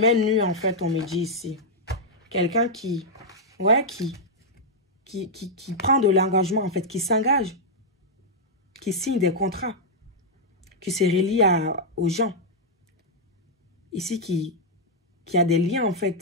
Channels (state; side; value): normal; both; correlation -0.05